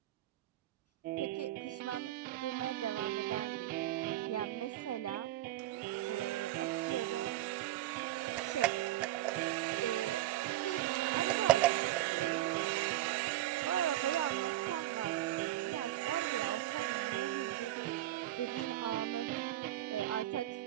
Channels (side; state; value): left; quieter; 14.6 dB